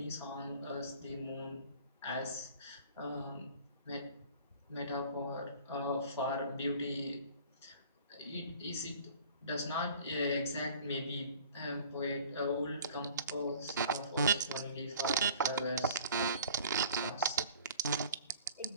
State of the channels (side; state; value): both; inverted; correlation -0.47